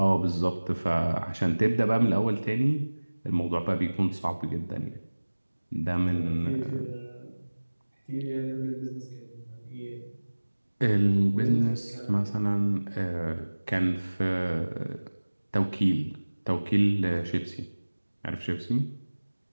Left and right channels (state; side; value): inverted; both; correlation -1.00